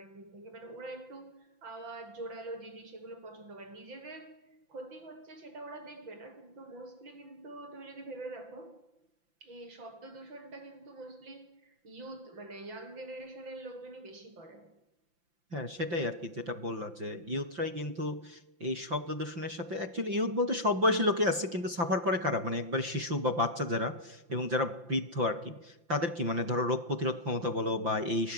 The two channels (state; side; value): late; left; 5.8 ms